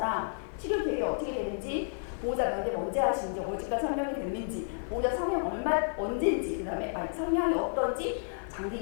치료 계획이 어떻게 되는지, 보호자 면접 언제 하시는지, 언제까지 설명이 됐는지, 보호자 성형 언제인지, 그 다음에 성향이 어떤지, 장기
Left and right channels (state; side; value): silent; right; digital silence